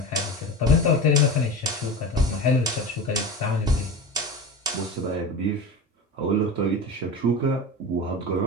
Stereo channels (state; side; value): normal; both; correlation 0.28